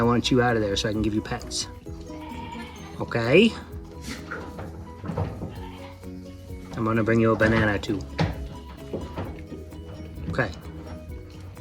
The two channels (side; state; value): both; identical; correlation 1.00